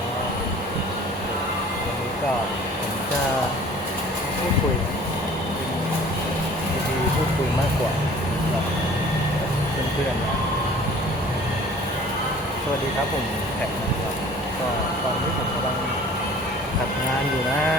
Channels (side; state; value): both; normal; correlation 0.49